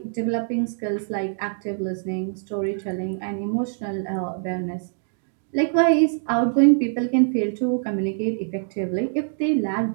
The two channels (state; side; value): silent; left; digital silence